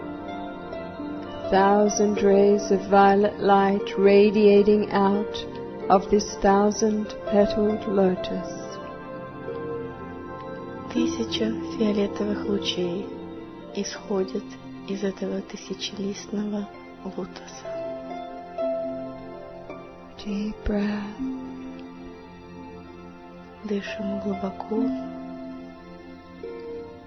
1,000 rays of violet light radiating out of this 1,000-petaled lotus. 1000 фиолетовых лучей исходят из этого тысячелистного лотоса. Deep breath. Дышим глубоко.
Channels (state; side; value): identical; both; correlation 1.00